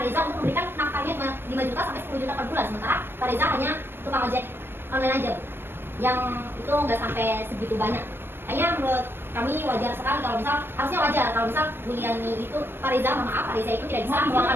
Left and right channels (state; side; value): late; left; 0.10 ms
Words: Reza untuk memberikan nafkahnya 5 juta sampai 10 juta per bulan. Sementara Pak Reza hanya tukang ojek online aja Bu. Yang itu nggak sampai segitu banyak. Hanya menurut kami wajar sekali kalau misal, harusnya wajar kalau misal Bu Yani itu Pak Reza, maaf Pak Reza itu tidak bisa meluangkan